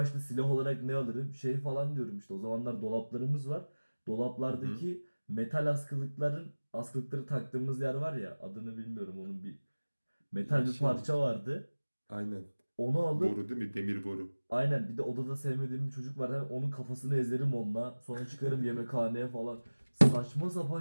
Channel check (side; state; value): both; inverted; correlation -1.00